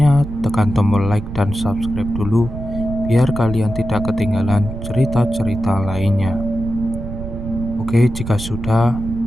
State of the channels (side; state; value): right; noise; rumble, 9 dB below the sound